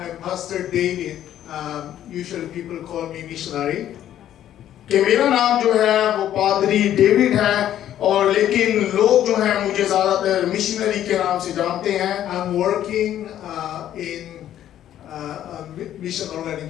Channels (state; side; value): quieter; right; 11.5 dB